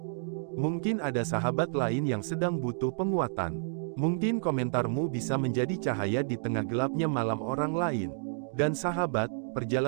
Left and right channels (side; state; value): left; silent; digital silence